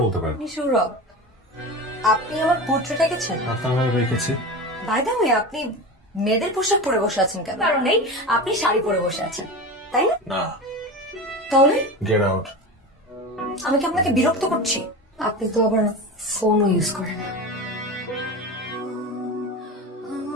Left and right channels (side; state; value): both; normal; correlation 0.27